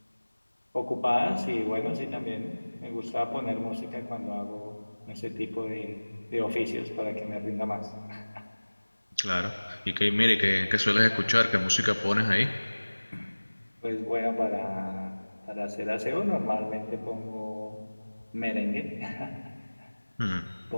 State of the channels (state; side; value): inverted; both; correlation -1.00